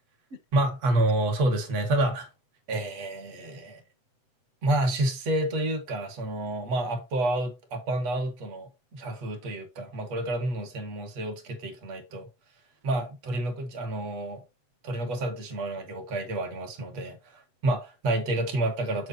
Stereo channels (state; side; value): late; left; 8.2 ms